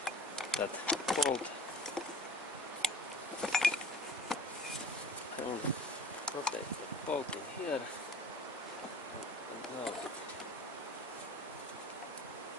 that bolt. I only rotate the bolt in here, and now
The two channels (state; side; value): normal; both; correlation 0.44